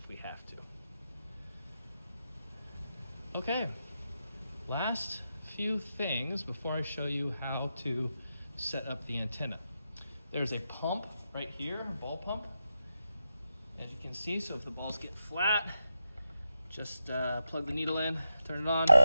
we have to. Okay, last few things before I show you how to set up the antenna. There's a pump right here, a ball pump, as you can see. So if the balls get flat, just plug the needle in, turn it on,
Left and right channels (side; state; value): both; inverted; correlation -0.88